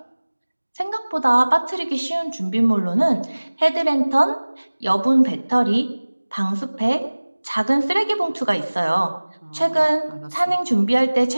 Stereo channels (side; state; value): both; inverted; correlation -1.00